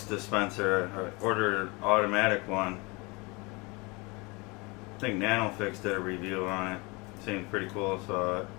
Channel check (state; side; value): quieter; right; 26.6 dB